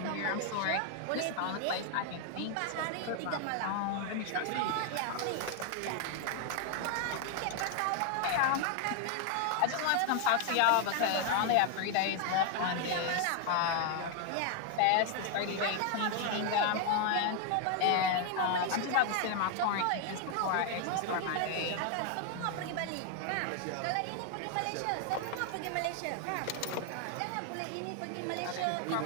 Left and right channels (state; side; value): different; both; correlation 0.00